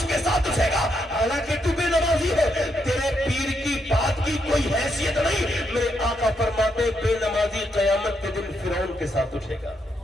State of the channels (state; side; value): normal; both; correlation 0.78